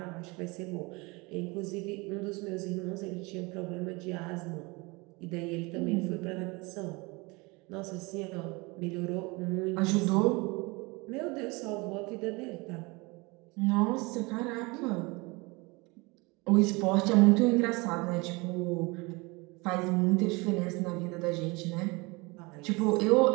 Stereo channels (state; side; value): quieter; left; 25.9 dB